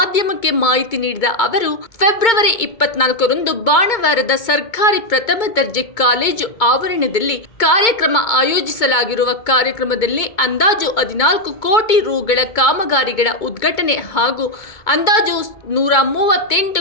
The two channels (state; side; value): late; right; 2.2 ms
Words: ಮಾಹಿತಿ ನೀಡಿದ ಅವರು, ಫೆಬ್ರವರಿ 24ರಂದು ಬಾಣವಾರದ ಸರ್ಕಾರಿ ಪ್ರಥಮ ದರ್ಜೆ ಕಾಲೇಜು ಆವರಣದಲ್ಲಿ ಕಾರ್ಯಕ್ರಮ ಆಯೋಜಿಸಲಾಗಿರುವ ಕಾರ್ಯಕ್ರಮದಲ್ಲಿ ಅಂದಾಜು 14 ಕೋಟಿ ರುಗಳ ಕಾಮಗಾರಿಗಳ ಉದ್ಘಾಟನೆ ಹಾಗೂ ಅಂದಾಜು